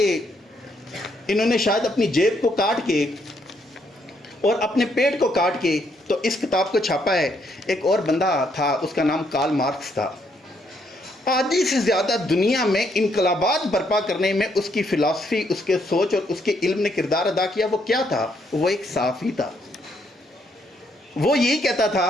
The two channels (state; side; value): normal; both; correlation 0.73